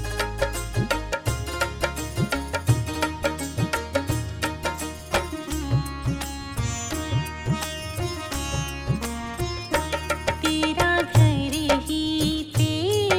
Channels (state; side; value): identical; both; correlation 1.00